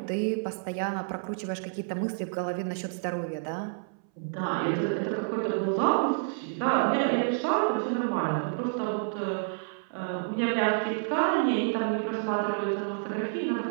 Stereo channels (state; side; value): silent; left; 58 dB below the other